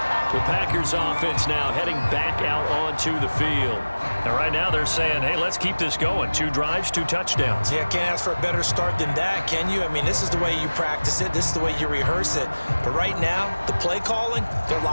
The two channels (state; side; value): inverted; both; correlation -1.00